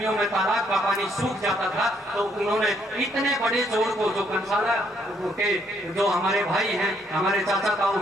में तालाब का पानी सूख जाता था तो उन्होंने इतने बड़े जोड़ को, जो कंसाला के जो हमारे भाई हैं, हमारे चाचा ताऊ,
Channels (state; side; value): normal; both; correlation 0.70